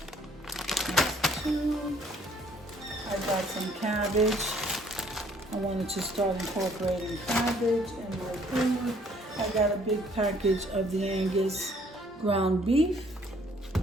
That's 2. I got some cabbage. I wanted to start incorporating cabbage in my food. I got a big package of the Angus ground beef.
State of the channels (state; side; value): normal; both; correlation 0.61